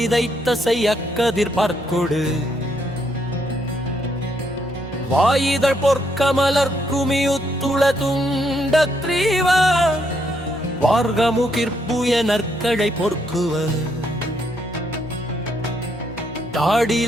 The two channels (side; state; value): both; normal; correlation 0.74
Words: செய்யக்கதிர் பார்க்கொடு வாயிதழ் பொற்கமலர் குமியுத்துள துண்ட கிரீவ வார்கமுகிர்புய நற்கழை பொற்குவ